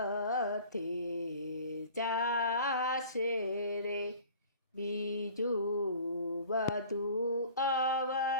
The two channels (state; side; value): inverted; both; correlation -0.46